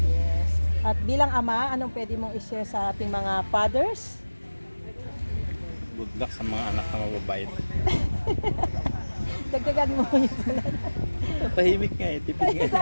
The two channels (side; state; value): both; inverted; correlation -1.00